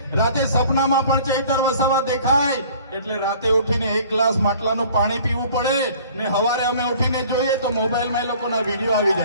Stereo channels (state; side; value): inverted; both; correlation -0.51